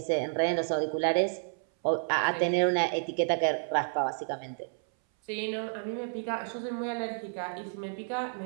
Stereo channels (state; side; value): silent; left; 57 dB below the other